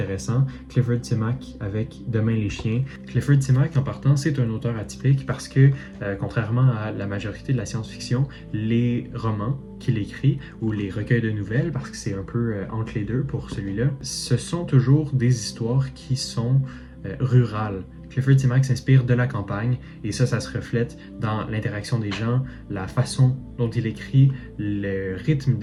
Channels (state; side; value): identical; both; correlation 1.00